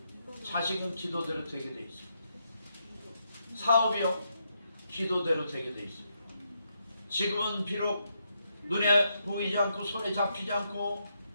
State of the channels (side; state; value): both; inverted; correlation -0.80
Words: 자식은 기도대로 되게 돼 있습니다. 사업이요. 기도대로 되게 돼 있습니다. 지금은 비록 눈에 보이지 않고 손에 잡히지 않고